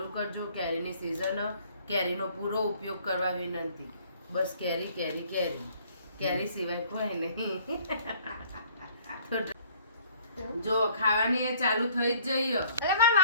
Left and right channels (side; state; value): both; inverted; correlation -0.58